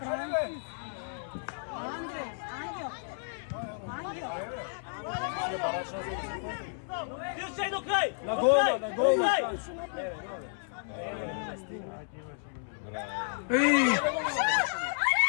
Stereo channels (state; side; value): silent; right; 57 dB below the other